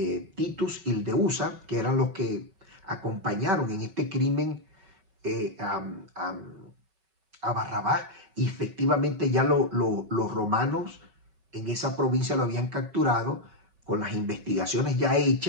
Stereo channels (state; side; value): late; left; 5.3 ms